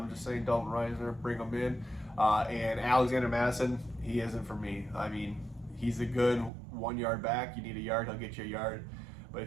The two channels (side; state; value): left; drops out; at 6.5 s